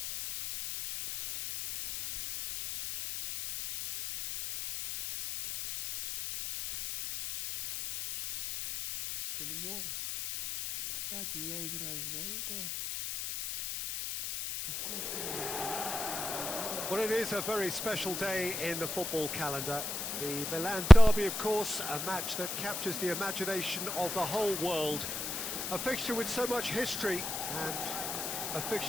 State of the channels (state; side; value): noise; left; hiss, 5 dB below the sound